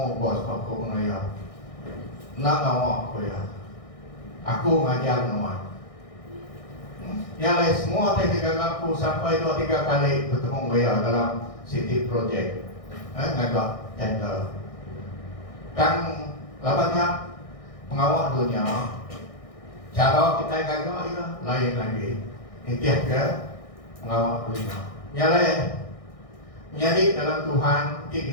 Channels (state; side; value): late; right; 1.6 ms